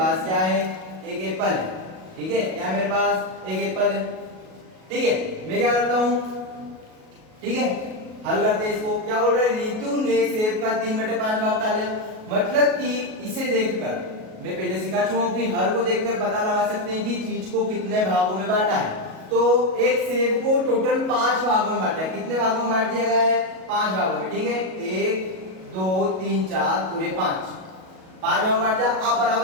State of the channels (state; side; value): late; left; 37 ms